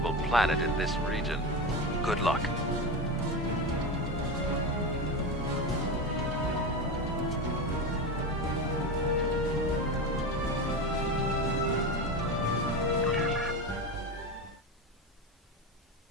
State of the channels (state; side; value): normal; both; correlation 0.20